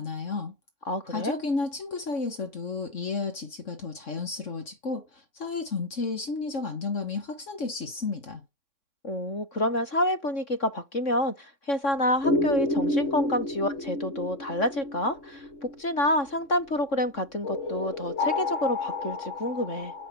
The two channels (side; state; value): right; late; 3.6 ms